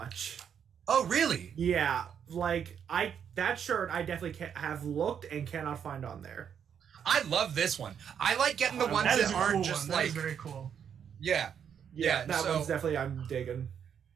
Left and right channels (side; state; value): left; quieter; 8.0 dB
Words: Oh, really? Yeah. Like, that shirt I definitely have looked and cannot find on there. I love this one. I like getting the ones that aren't cool just one. like... That is very cool. Yeah, that one's definitely I'm digging.